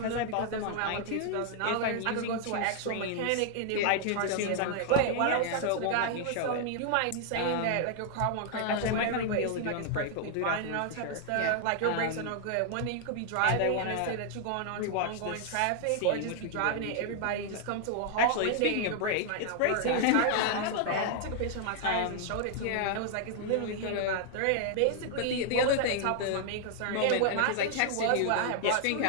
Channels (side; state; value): both; different; correlation -0.01